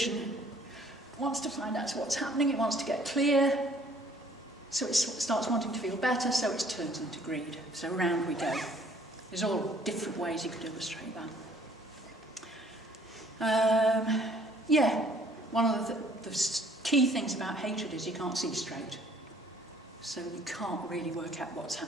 wants to find out what's happening, it wants to get clear, so it starts wanting to feel better, so it turns into greed. So round we go. There's all different ways you could illustrate that. One of the key things about hatred is you can't see straight. So you can't really work out what's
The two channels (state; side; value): normal; both; correlation 0.58